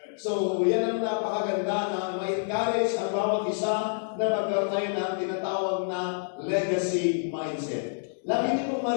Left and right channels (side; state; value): right; silent; digital silence